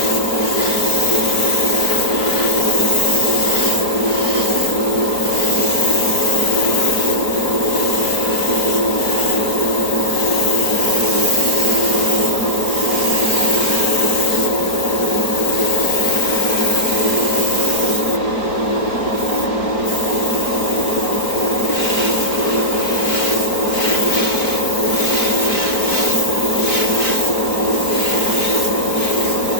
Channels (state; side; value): late; right; 4.4 ms